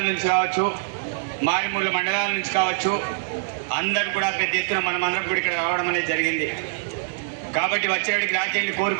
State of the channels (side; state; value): left; silent; digital silence